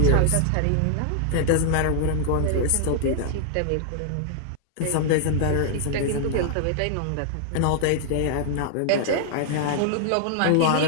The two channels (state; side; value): different; both; correlation -0.01